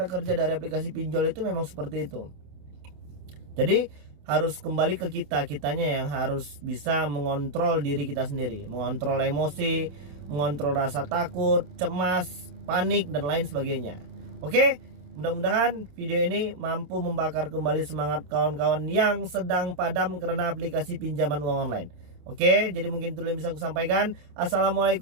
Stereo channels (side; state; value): left; late; 28 ms